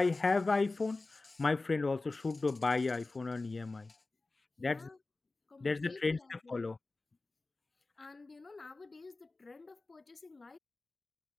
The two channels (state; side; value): quieter; right; 3.4 dB